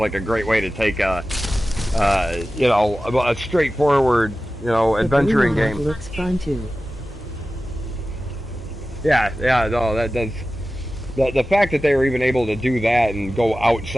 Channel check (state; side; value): normal; both; correlation 0.95